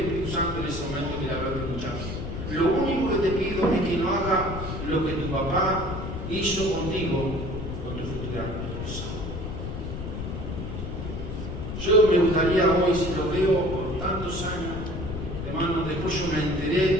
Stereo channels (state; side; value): noise; left; rumble, 6 dB below the sound